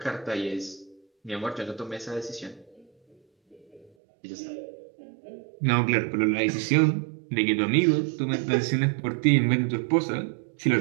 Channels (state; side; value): drops out; left; at 3.9 s